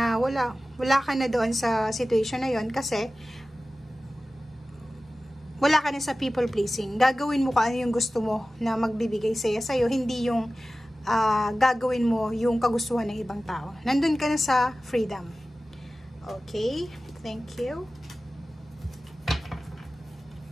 wala ka na doon sa situation na yon, kasi wala ka na sa people pleasing. Gagawin mo kung ano yung gusto mo na magbibigay sa'yo, hindi yung gagawin mo yung kagustuhan ng ibang tao. Nandun ka na sa freedom. Okay, thank you.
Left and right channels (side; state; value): both; normal; correlation 0.96